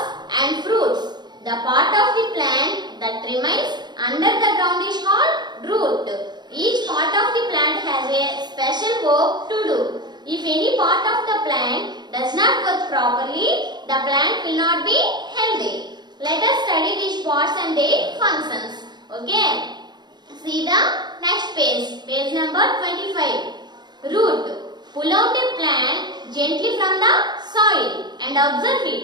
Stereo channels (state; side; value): late; left; 0.21 ms